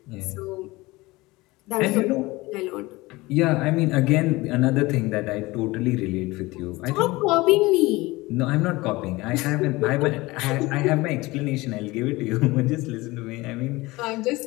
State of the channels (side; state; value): right; quieter; 21.2 dB